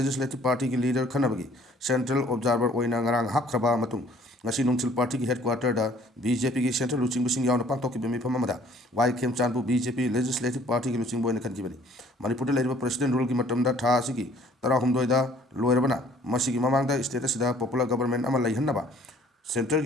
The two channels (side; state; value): both; normal; correlation 0.57